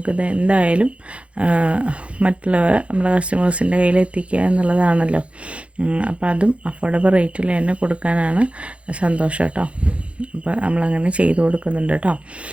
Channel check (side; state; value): left; late; 0.061 ms